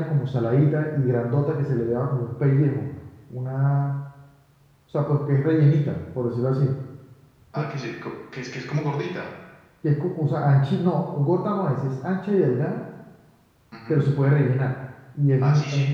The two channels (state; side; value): identical; both; correlation 1.00